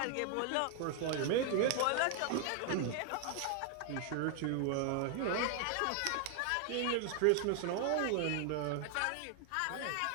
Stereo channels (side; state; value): both; different; correlation 0.00